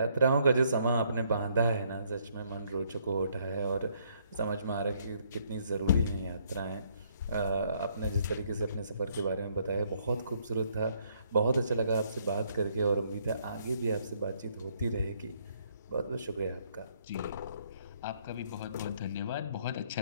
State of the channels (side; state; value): both; inverted; correlation -0.68